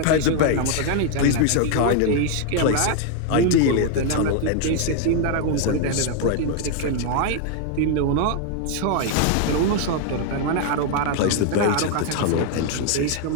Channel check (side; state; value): both; different; correlation 0.00